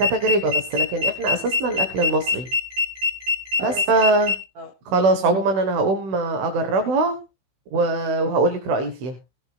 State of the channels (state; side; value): late; left; 16 ms